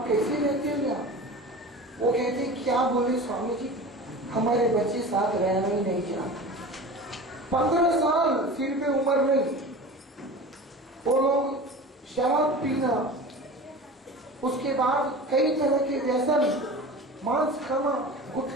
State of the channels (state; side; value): normal; both; correlation 0.35